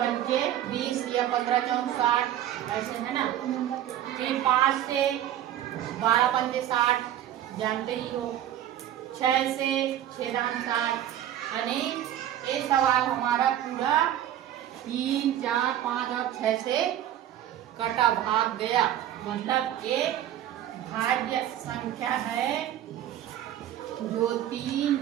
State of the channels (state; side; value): quieter; left; 11.8 dB